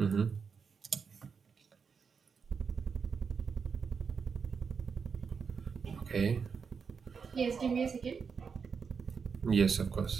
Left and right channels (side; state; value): left; quieter; 5.8 dB